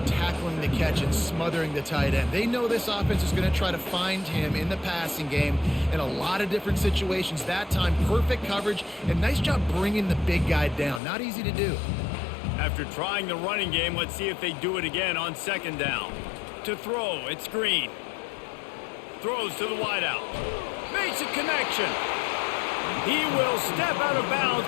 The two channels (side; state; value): right; drops out; at 11.0 s